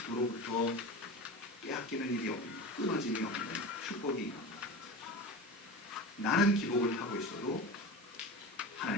빼앗기는 일이 없는 끊어짐이 없는 축복이 있는 나는 기복을 타고 있어도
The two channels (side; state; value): both; normal; correlation 0.29